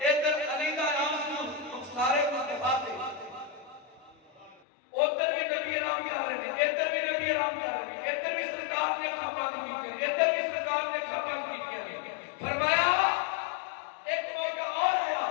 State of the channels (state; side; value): drops out; right; at 4.6 s